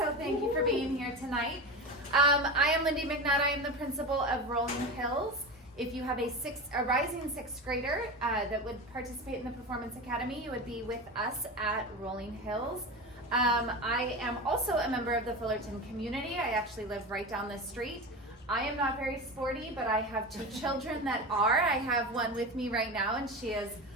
thank you for being here tonight. I am Lindy McNutt. I am the principal of Rolling Hills. If you have a rising 6th grader that would participate in the Performance Academy, you would be with us at Rolling Hills. I am also a member of the Fullerton community. I actually live right down the street. I am not very sporty, but I have 2 children that are. I have one with me right now, and she is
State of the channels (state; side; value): normal; both; correlation 0.25